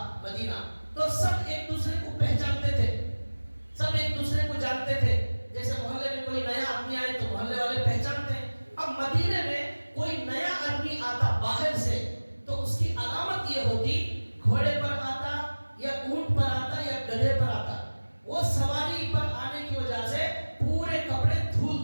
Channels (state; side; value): inverted; both; correlation -1.00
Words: مدینہ۔ تو سب ایک دوسرے کو پہچانتے تھے، سب ایک دوسرے کو جانتے تھے، جیسے محلے میں کوئی نیا آدمی آئے تو محلے والے پہچانتے ہیں۔ اب مدینے میں کوئی نیا آدمی آتا باہر سے تو اس کی علامت یہ ہوتی گھوڑے پر آتا یا اونٹ پر آتا یا گدھے پر آتا، وہ سواری پر آنے کی وجہ سے پورے کپڑے دھول